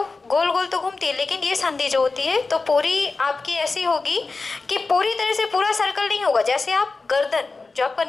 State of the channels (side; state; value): right; quieter; 3.9 dB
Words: गोल गोल तो घूमती है, लेकिन ये संधि जो होती है तो पूरी आपकी ऐसी होगी कि पूरी तरह से पूरा सर्कल नहीं होगा। जैसे आप गर्दन, जो आपका